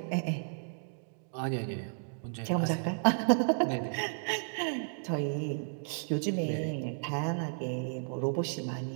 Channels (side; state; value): left; silent; digital silence